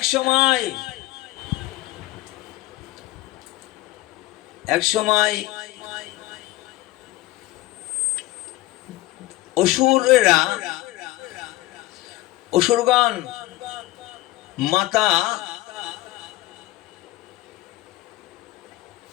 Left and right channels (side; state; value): right; quieter; 17.9 dB